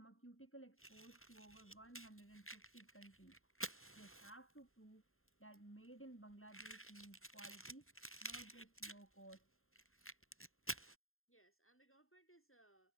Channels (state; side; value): late; right; 0.61 ms